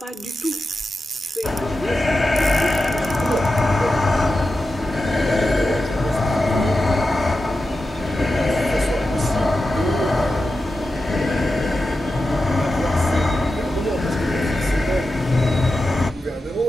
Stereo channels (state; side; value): normal; both; correlation 0.91